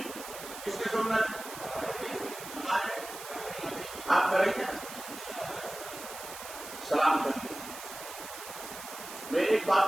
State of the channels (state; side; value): noise; right; hiss, 11 dB below the sound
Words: کس کی سنت؟ ہمارے. آپ کریں گے سلام کریں. میں ایک